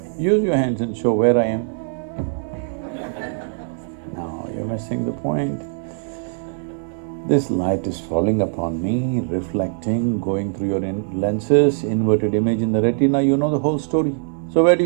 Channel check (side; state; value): left; silent; digital silence